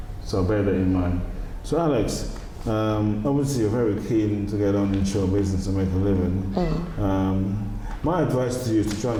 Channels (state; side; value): identical; both; correlation 1.00